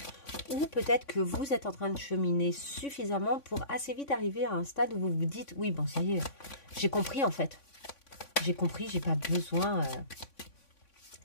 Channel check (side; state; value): right; late; 3.5 ms